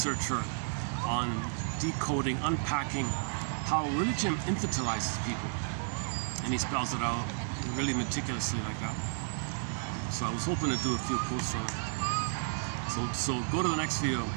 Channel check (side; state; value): left; silent; digital silence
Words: on decoding, unpacking how religion infantilizes people. And he spells it out really meticulously like that. So I was hoping to do a few quotes from it. So go to the next video